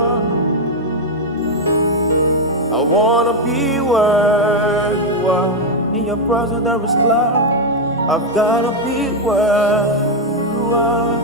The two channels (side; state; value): both; normal; correlation 0.02